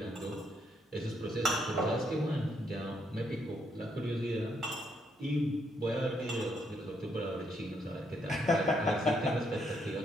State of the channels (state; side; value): normal; both; correlation 0.74